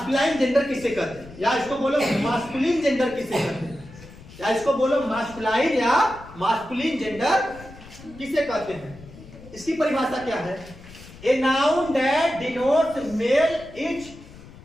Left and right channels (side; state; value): left; noise; rumble, 19 dB below the sound